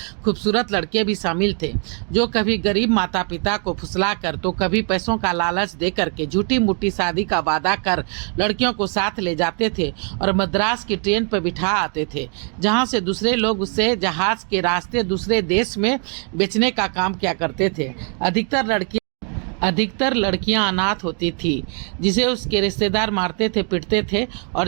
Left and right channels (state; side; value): quieter; left; 39.5 dB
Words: खूबसूरत लड़के भी शामिल थे, जो कभी गरीब माता पिता को फुसला कर तो कभी पैसों का लालच दे करके झूठी मूठी शादी का वादा कर लड़कियों को साथ ले जाते थे और मद्रास की ट्रेन पर बिठा आते थे, जहाँ से दूसरे लोग उससे जहाज के रास्ते दूसरे देश में बेचने का काम किया करते थे। अधिकतर लड़कियां अनाथ होती थी, जिसे उसके रिश्तेदार मारते थे, पीटते थे